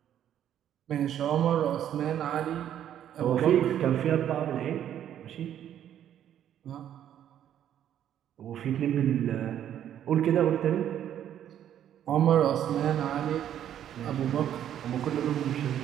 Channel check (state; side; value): quieter; left; 10.4 dB